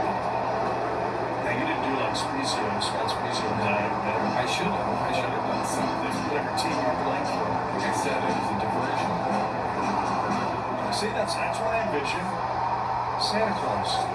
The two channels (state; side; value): identical; both; correlation 1.00